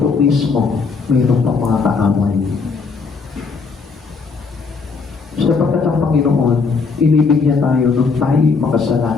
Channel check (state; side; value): quieter; right; 4.8 dB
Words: mismo, mayroon pa mga kaaway. Sapagkat ang Panginoon, inibig niya tayo nung tayo